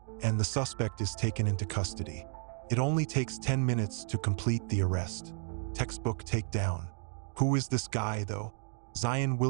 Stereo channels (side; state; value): left; silent; 56 dB below the other